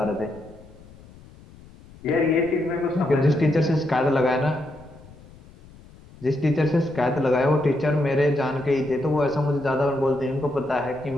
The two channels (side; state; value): left; noise; rumble, 22 dB below the sound